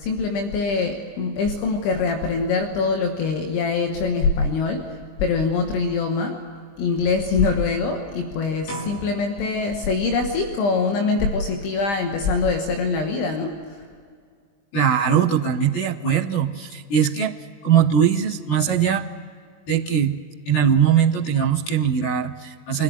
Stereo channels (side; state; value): right; late; 20 ms